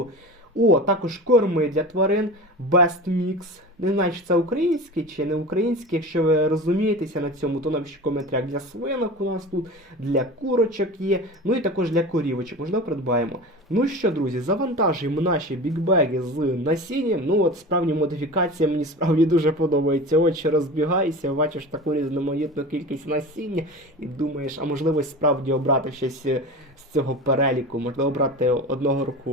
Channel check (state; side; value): normal; both; correlation 0.32